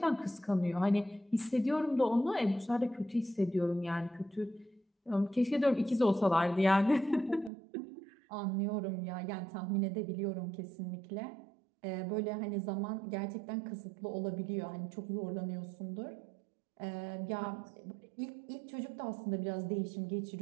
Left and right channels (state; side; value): drops out; left; at 7.5 s